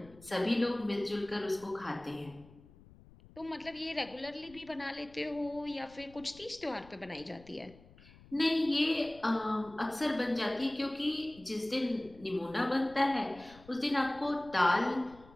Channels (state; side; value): noise; left; rumble, 23 dB below the sound